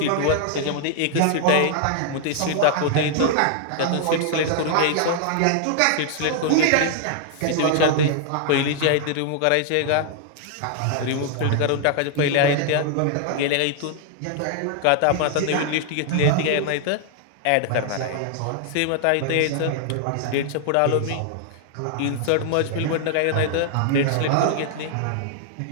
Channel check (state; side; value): different; both; correlation 0.00